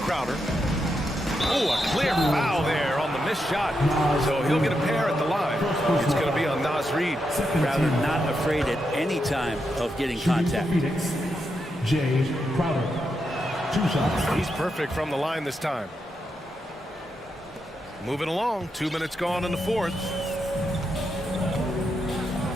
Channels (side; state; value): both; normal; correlation 0.84